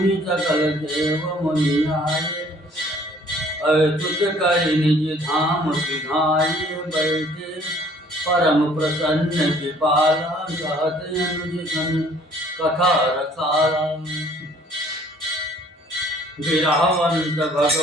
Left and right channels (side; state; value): both; normal; correlation 0.57